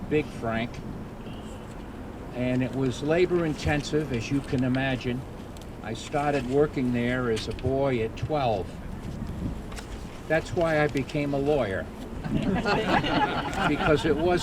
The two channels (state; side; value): identical; both; correlation 1.00